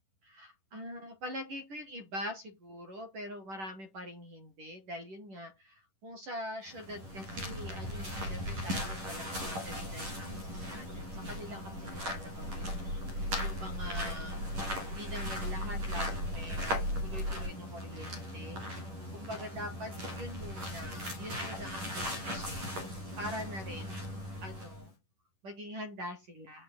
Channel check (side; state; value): left; late; 10 ms